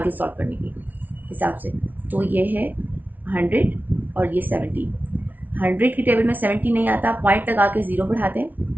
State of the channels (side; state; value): left; late; 0.081 ms